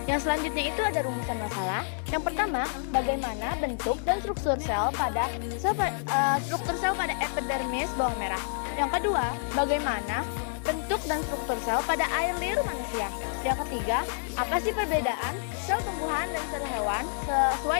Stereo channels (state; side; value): silent; right; digital silence